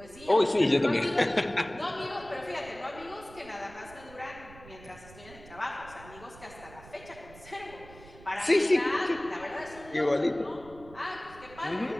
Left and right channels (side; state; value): right; noise; rumble, 19 dB below the sound